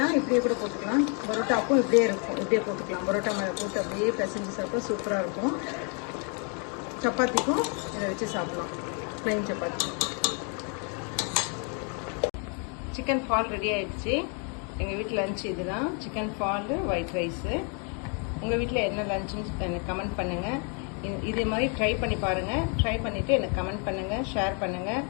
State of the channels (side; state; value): right; quieter; 38.6 dB